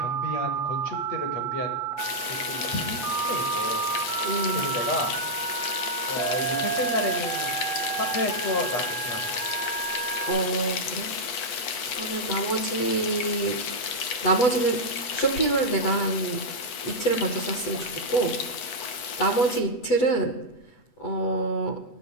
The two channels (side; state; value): right; late; 8.2 ms